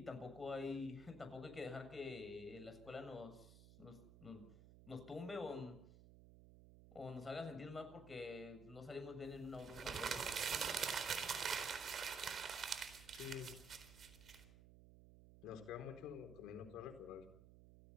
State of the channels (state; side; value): noise; right; hum, 17 dB below the sound